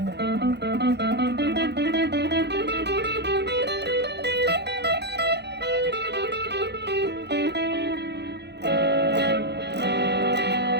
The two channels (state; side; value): late; left; 0.49 ms